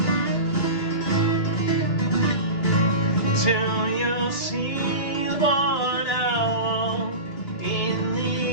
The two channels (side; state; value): right; late; 2.9 ms